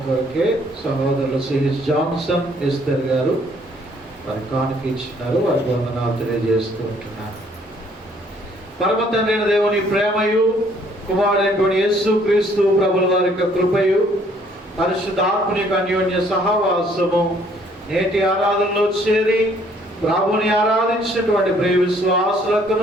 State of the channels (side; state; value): both; normal; correlation 0.63